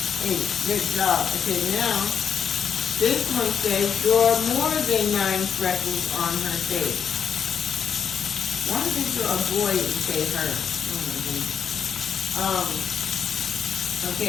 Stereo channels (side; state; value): right; quieter; 7.3 dB